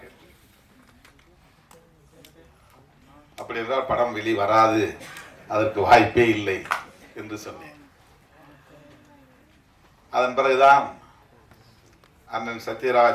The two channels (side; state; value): both; identical; correlation 1.00